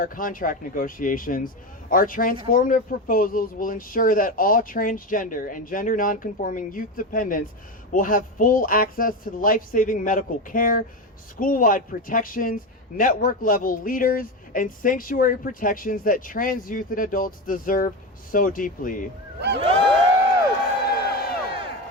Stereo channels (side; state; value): both; normal; correlation 0.18